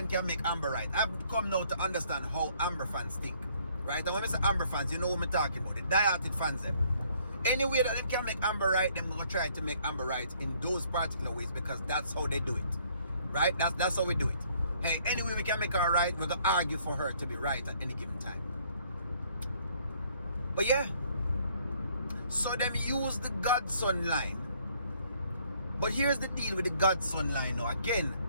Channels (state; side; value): inverted; both; correlation -0.64